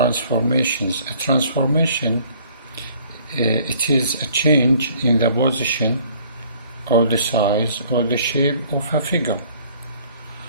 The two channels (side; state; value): both; inverted; correlation -0.57